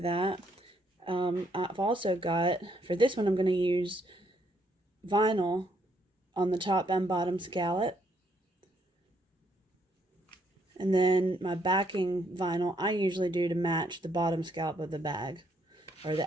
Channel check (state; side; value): normal; both; correlation 0.72